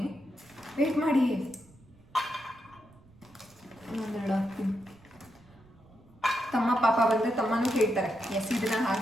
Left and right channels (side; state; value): right; noise; rumble, 26 dB below the sound